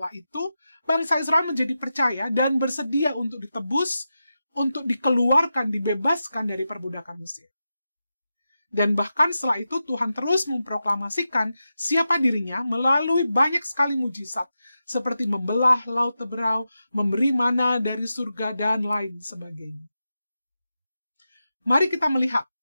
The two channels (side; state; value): both; inverted; correlation -0.90